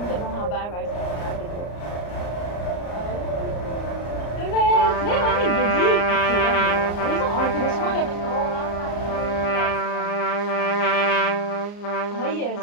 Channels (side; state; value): right; late; 34 ms